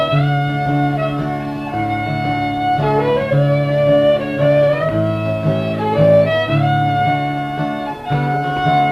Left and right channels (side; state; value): both; identical; correlation 1.00